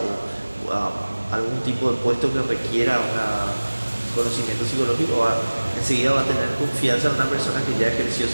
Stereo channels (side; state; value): both; inverted; correlation -1.00